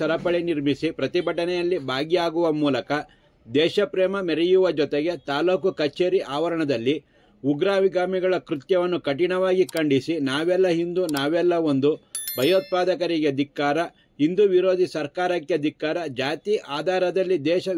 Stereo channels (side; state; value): both; identical; correlation 1.00